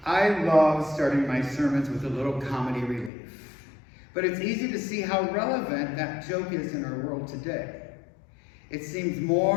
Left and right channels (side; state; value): right; drops out; at 3.1 s